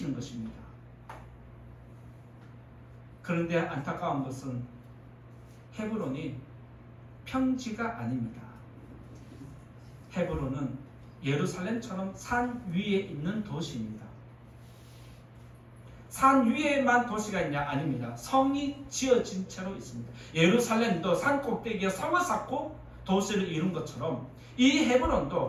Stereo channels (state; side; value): identical; both; correlation 1.00